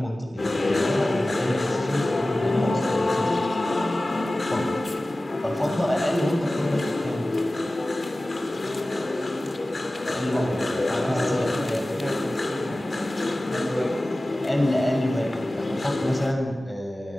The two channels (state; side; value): normal; both; correlation 0.96